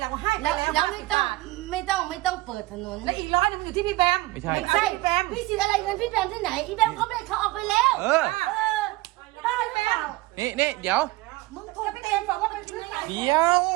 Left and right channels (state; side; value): quieter; left; 19.8 dB